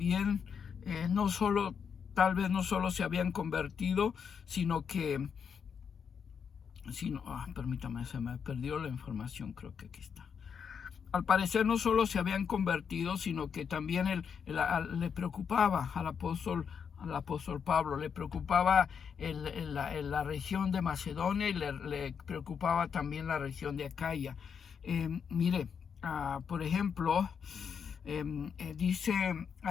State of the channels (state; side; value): quieter; right; 6.9 dB